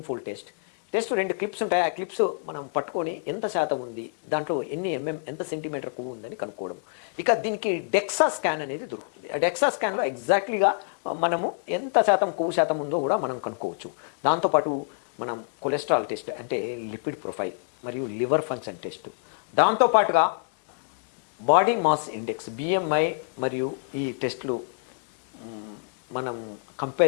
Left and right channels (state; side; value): silent; right; digital silence